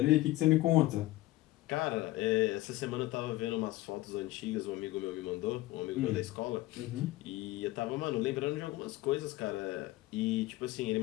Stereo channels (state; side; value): quieter; right; 17.7 dB